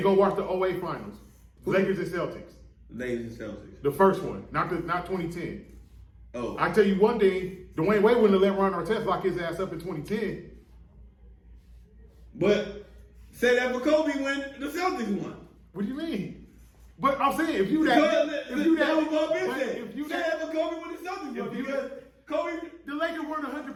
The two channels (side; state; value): both; identical; correlation 1.00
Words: go watch the 08 Finals. Lakers and Celtics. Ladies and Celtics. The first one, not 2010. Oh. I tell you one thing, Dwyane Wade wouldn't have let Ron Artest lock his ass up in 2010. But say that for Kobe when the Celtics won. What do you mean? But I'm saying if you That that, was Paul Pierce but said. if you Say that, that for Kobe when the Celtics won. If you- Because Kobe. the Lakers weren't